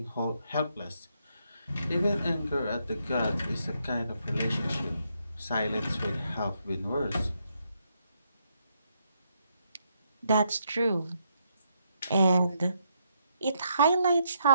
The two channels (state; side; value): inverted; both; correlation -0.77